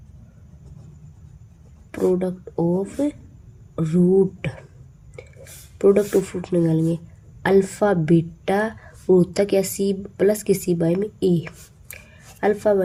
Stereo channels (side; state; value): both; identical; correlation 1.00